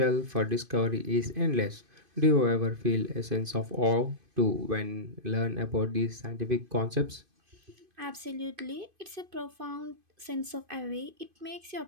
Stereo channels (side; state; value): left; late; 2.5 ms